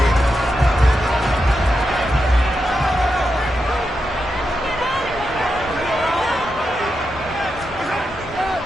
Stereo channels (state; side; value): normal; both; correlation 0.87